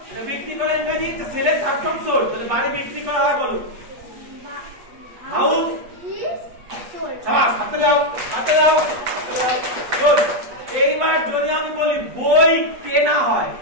এটা বিক্রি করে ইংরেজি সেলের থার্ড ফর্ম সোল্ড। তাহলে বাড়ি বিক্রি করা হয় বলো। House is sold. শাবাশ, হাতে দাও, হাতে দাও। গুড। এইবার যদি আমি বলি বই কেনা হয়,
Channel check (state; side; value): late; left; 8.4 ms